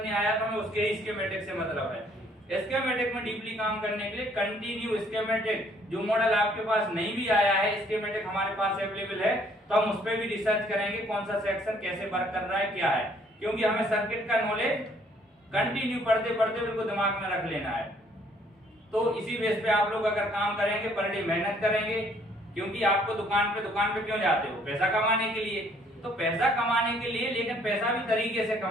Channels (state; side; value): normal; both; correlation 0.63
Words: आया तो हमें उसके ही स्कीमेटिक से मतलब है। स्कीमेटिक में डीपली काम करने के लिए कंटिन्यू स्कीमेटिक, जो मॉडल आपके पास नहीं भी आया है, स्कीमेटिक हमारे पास अवेलेबल है, तो हम उस पर भी रिसर्च करेंगे कौन सा सेक्शन कैसे वर्क कर रहा है, क्या है। क्योंकि हमें सर्किट का नॉलेज कंटिन्यू पढ़ते पढ़ते उनको दिमाग में रख लेना है। तो इसी बेस पे आप लोग अगर काम करेंगे, पर डे मेहनत करेंगे, क्योंकि आपको दुकान पे क्यों जाते हो, पैसा कमाने के लिए। तो पैसा कमाने के लिए, लेकिन पैसा भी तरीके से